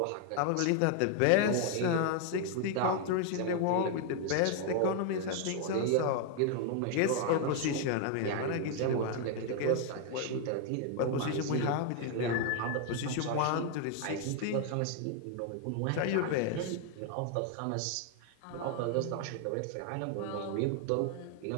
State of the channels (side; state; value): both; different; correlation 0.00